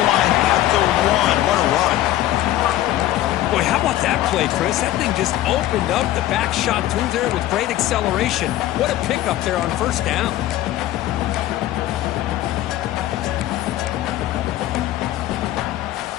line at the 1. What a run. Boy, how about that play, Chris? That thing just opened up the back shot through there with great acceleration. What a pickup there on first down.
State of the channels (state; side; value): quieter; right; 14.2 dB